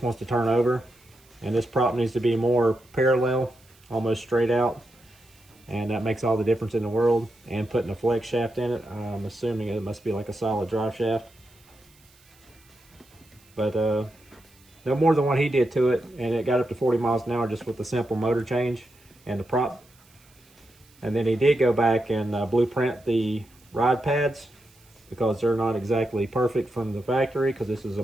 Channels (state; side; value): noise; right; hiss, 29 dB below the sound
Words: wants to turn over, and this prop needs to be more parallel, almost straight out, and that makes all the difference in the world. And putting a flex shaft in it, I'm assuming it must be like a solid drive shaft, but no more than what he did to it, and it got up to 40 miles an hour just with the simple motor change and the prop. And then he did go back and blueprint the rod pads because they're not exactly perfect from the factory, because this is a